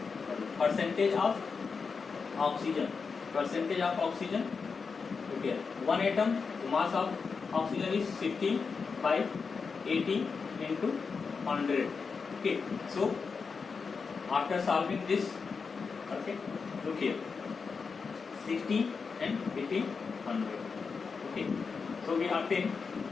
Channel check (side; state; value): right; quieter; 5.2 dB